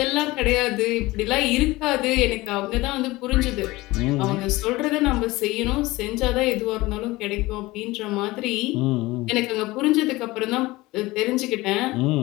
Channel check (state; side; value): quieter; right; 20.1 dB